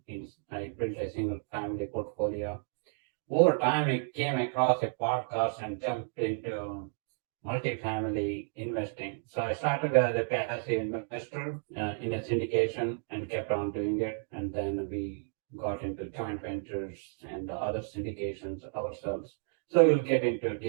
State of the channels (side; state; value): left; silent; 56 dB below the other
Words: I built a single family portfolio. Over time, I came across a podcast and jumped into multifamily investing. So I started as a passive investor in a syndication and kept on doing it. And then we got into joint ventures and other syndications ourselves. So we'll get into